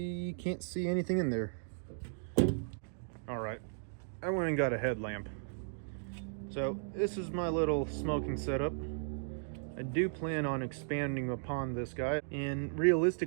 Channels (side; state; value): left; silent; digital silence